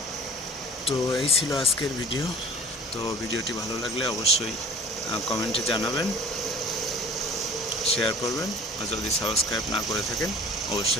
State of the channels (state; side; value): normal; both; correlation 0.46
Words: তো এই ছিল আজকের ভিডিও। তো ভিডিওটি ভালো লাগলে অবশ্যই কমেন্টে জানাবেন, শেয়ার করবেন, আর যদি সাবস্ক্রাইব না করে থাকেন